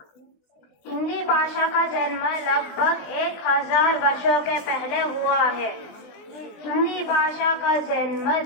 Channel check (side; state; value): right; late; 19 ms